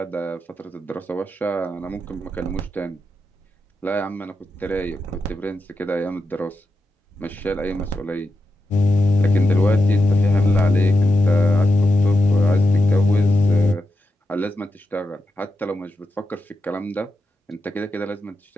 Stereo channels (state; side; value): normal; both; correlation 0.88